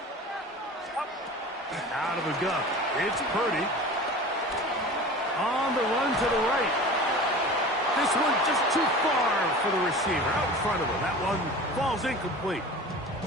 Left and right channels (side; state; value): both; normal; correlation 0.37